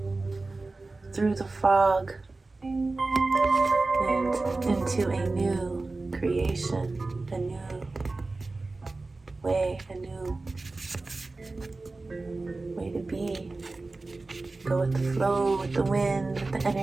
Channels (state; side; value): quieter; left; 3.4 dB